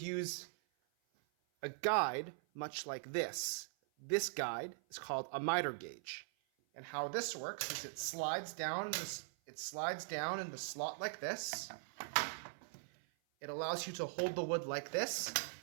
use a guide much like this. This guide is called a miter gauge. And how this works is it slides down in the slot like this. It allows you to hold the wood like this,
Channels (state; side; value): silent; left; 50 dB below the other